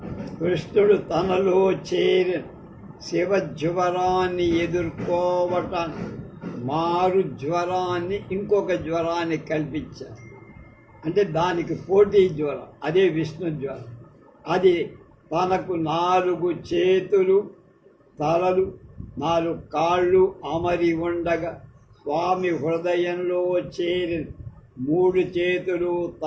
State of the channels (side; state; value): both; identical; correlation 1.00